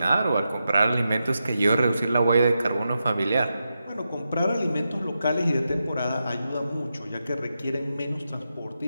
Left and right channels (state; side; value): inverted; both; correlation -0.88